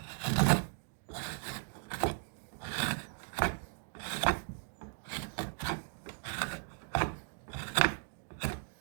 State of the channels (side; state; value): left; silent; 53 dB below the other